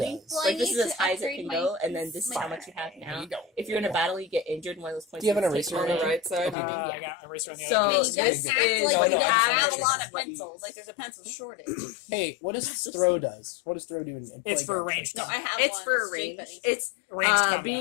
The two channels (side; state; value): right; drops out; at 6.6 s